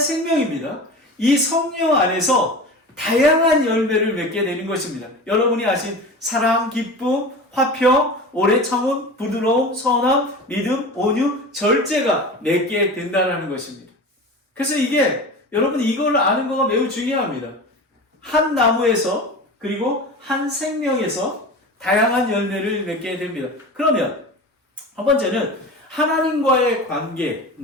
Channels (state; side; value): normal; both; correlation 0.32